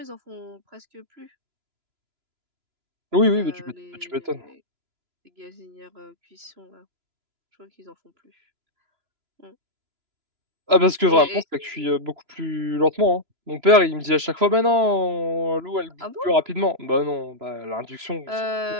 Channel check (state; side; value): late; left; 3.0 ms